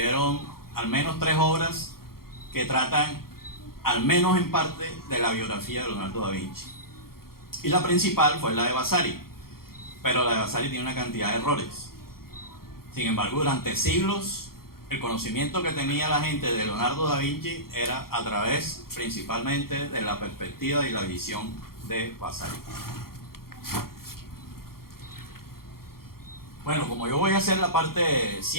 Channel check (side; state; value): right; late; 0.93 ms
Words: al menos 3 obras que tratan, al menos en parte, de la biografía de Leonardo da Vinci. Y la principal fue la de Vasari, pero la de Vasari tiene una cantidad de errores. Sin embargo, durante siglos, el conocimiento que tenía la gente de Leonardo da Vinci era a través, principalmente, de la perspectiva y la visión de Vasari. Bueno, como yo voy a hacer la parte